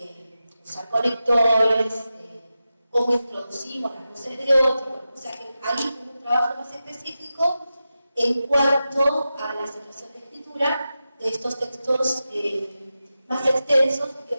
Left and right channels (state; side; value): inverted; both; correlation -0.92